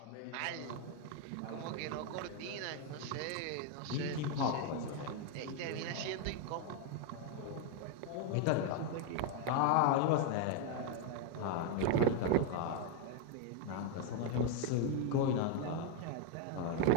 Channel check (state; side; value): different; both; correlation 0.01